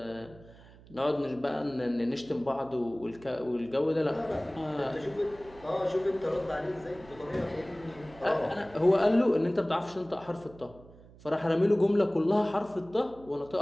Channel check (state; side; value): noise; right; hum, 22 dB below the sound